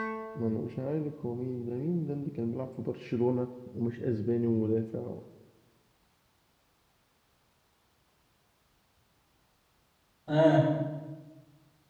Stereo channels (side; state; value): both; identical; correlation 1.00